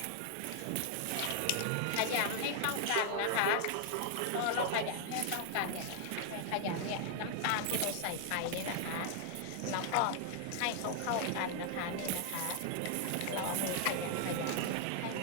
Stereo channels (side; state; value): both; different; correlation 0.00